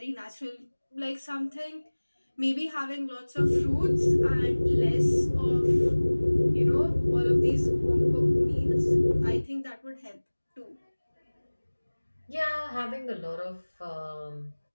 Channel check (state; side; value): inverted; both; correlation -1.00